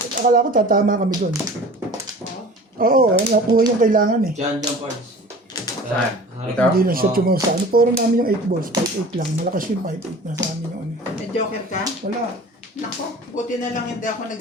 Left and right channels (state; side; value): normal; both; correlation 0.42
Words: Akala ko tatama kami doon. Oo, nakuha yung kailangan eh. Diyan, parts. Saan? Ito? Hindi na siya tumaw sa ano. Puro namin yung 8 balls. 5-8 lang. Malakas yung 5-8 na sa amin yung ano. May joker ka? Wala. Nako, buti na lang hindi ako